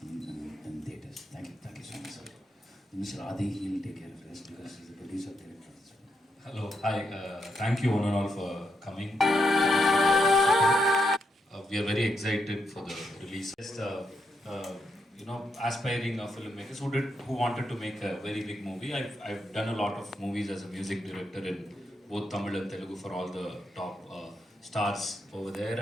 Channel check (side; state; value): both; normal; correlation 0.81